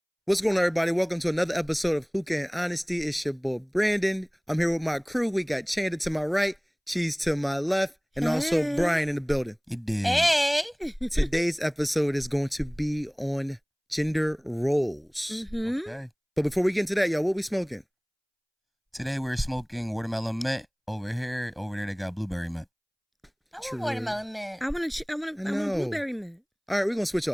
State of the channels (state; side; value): identical; both; correlation 1.00